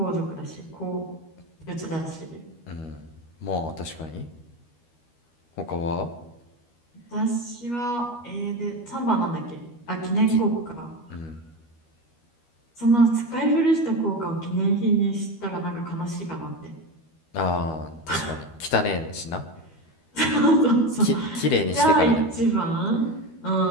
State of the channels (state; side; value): late; right; 13 ms